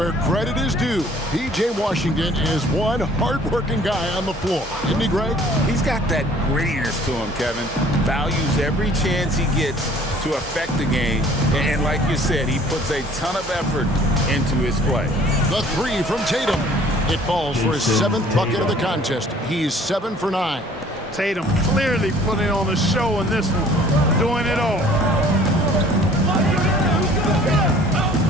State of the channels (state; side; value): normal; both; correlation 0.54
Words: credit is due. P.J. Washington is one hard-working guy on the floor. Isn't he, Greg? He's got that grittiness to him, Kevin. Values every chance he gets to affect the game. And like you said, he puts a ton of effort into his play. The 3 from Tatum. It falls for his 7th bucket of the contest. He's 7 for 9. Tatum clearly putting on a show in this one. Doing it all.